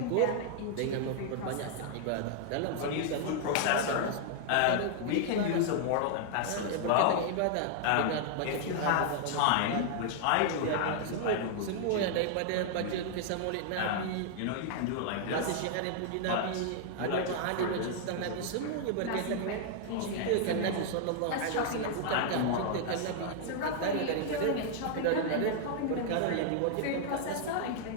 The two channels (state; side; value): different; both; correlation -0.01